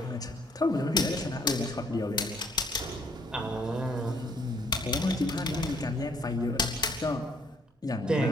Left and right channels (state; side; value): normal; both; correlation 0.65